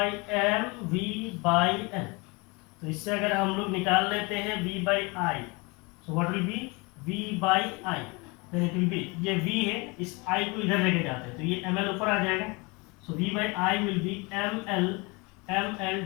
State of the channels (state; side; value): quieter; right; 27.3 dB